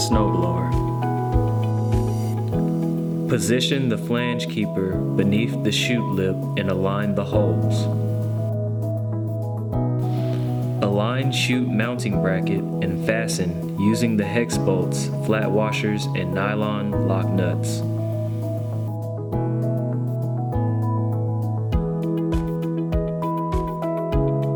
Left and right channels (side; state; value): both; identical; correlation 1.00